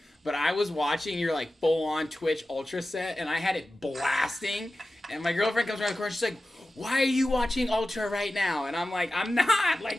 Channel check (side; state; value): both; normal; correlation 0.94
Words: But I was watching your, like, full-on Twitch Ultra set, and I had it blasting. And my girlfriend comes around the corner, she's like, why are you watching Ultra right now? And I'm like, I'm not.